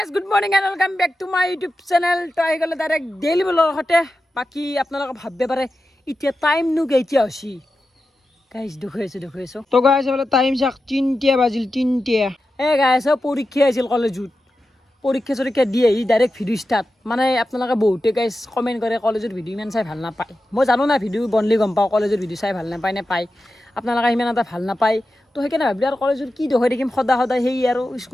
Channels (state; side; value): normal; both; correlation 0.91